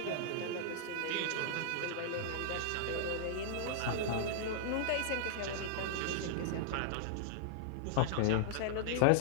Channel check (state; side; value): different; both; correlation -0.02